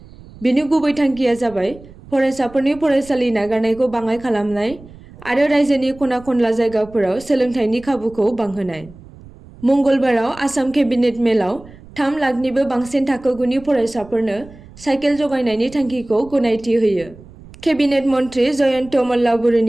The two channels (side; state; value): right; noise; rumble, 20 dB below the sound